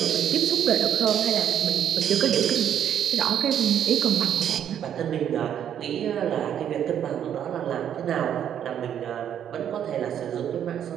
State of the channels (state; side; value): quieter; left; 9.5 dB